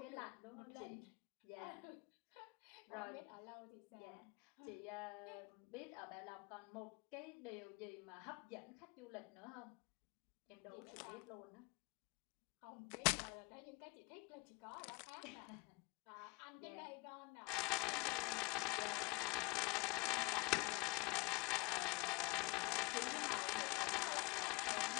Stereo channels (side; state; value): right; quieter; 24.6 dB